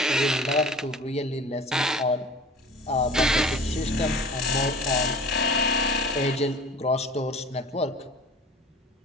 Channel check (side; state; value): both; normal; correlation 0.42